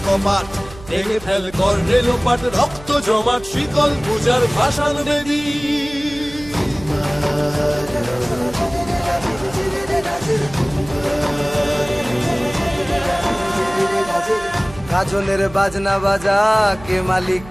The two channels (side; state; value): right; noise; hum, 18 dB below the sound